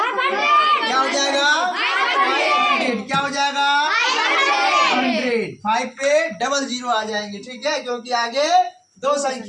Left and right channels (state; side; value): identical; both; correlation 1.00